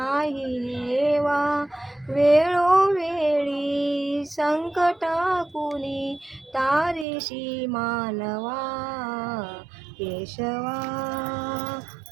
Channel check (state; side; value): drops out; left; at 7.1 s